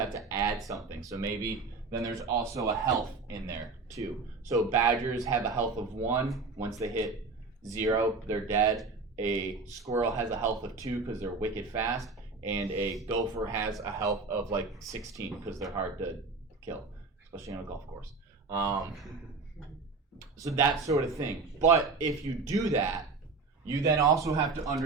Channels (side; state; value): left; quieter; 4.2 dB